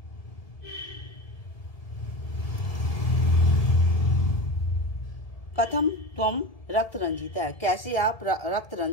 कथम त्वम रक्त रंजित है, कैसे आप रक्त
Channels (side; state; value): right; late; 1.6 ms